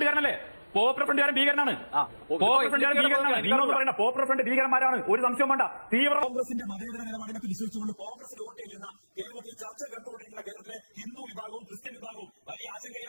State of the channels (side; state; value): both; inverted; correlation -1.00